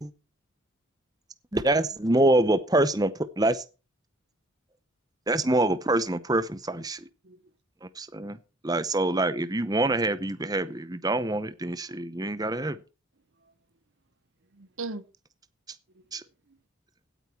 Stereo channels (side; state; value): both; normal; correlation 0.56